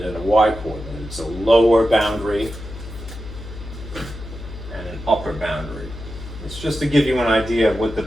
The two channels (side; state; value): left; noise; hum, 12 dB below the sound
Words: and a y coordinate. It's a lower boundary and an upper boundary. It's just to give you an idea of what the